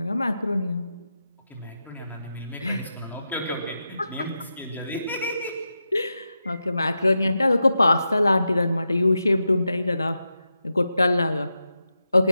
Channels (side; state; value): both; inverted; correlation -0.89